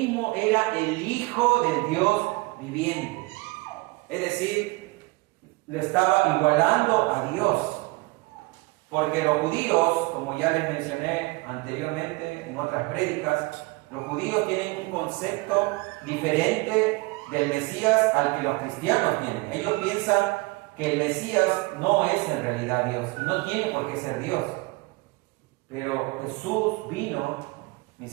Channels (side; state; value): left; quieter; 24.4 dB